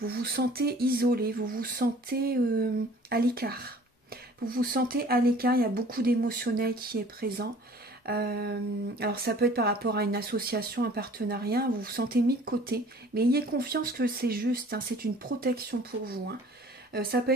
vous sentez isolé, vous vous sentez à l'écart. Vous vous sentez à l'écart, il y a beaucoup d'émotionnel qui est présent. Alors ça peut être par rapport à une association, un partenariat, vous vous sentez mis de côté, mais ayez confiance que c'est juste, hein, c'est une protection pour vous. Hein. Ça peut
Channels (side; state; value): both; normal; correlation 0.50